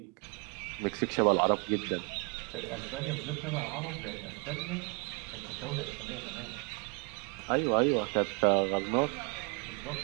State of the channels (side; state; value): left; quieter; 32.1 dB